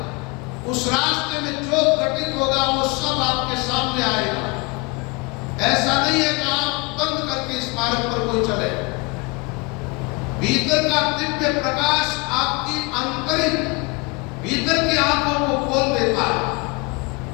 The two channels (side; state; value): right; quieter; 27.9 dB